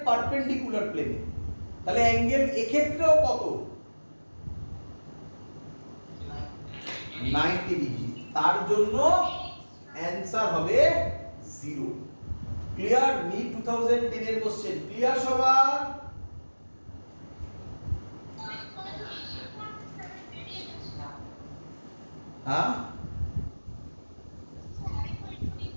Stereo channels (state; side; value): inverted; both; correlation -1.00